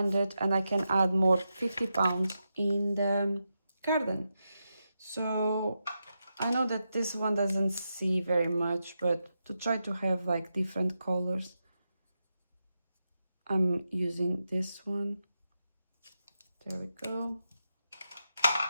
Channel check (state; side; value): inverted; both; correlation -0.87